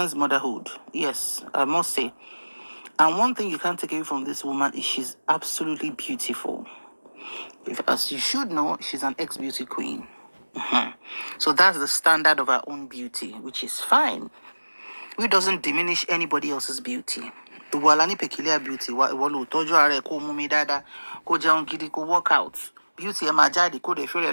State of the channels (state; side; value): inverted; both; correlation -1.00